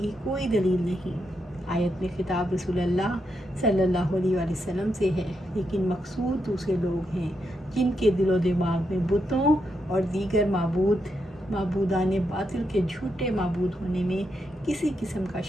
کوئی دلیل نہیں۔ آیت میں خطاب رسول اللہ صلی اللہ علیہ وآلہ وسلم سے ہے، لیکن مقصود دوسرے لوگ ہیں جن کے دل و دماغ میں بتوں اور دیگر معبودان باطل کے جھوٹے معبود ہونے میں کسی قسم کا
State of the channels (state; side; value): normal; both; correlation 0.82